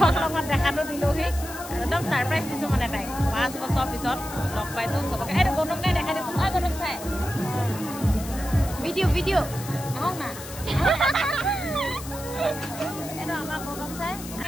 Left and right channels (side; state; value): left; noise; hiss, 13 dB below the sound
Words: দেখাটো দিলোঁহি একদম ছাৰপ্ৰাইজ দিছোঁ মানে তাইক 5 বছৰ পিছত লগ পাইছোঁ চবকে এইটো গৌতম চাই দেখাই দিছোঁ গৌতম চাই ভিডিঅ' আহক না এইটো আমাৰ গৌতম চাই